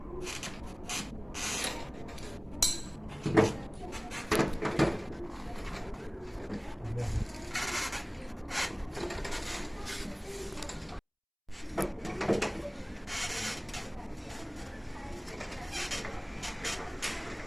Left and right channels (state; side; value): identical; both; correlation 1.00